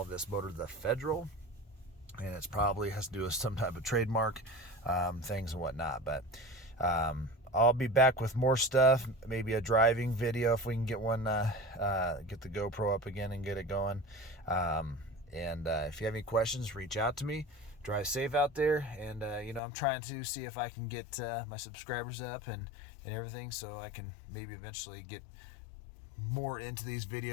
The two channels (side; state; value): right; drops out; at 19.6 s